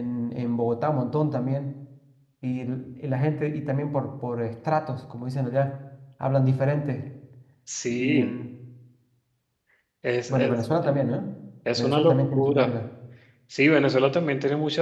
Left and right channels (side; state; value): both; identical; correlation 1.00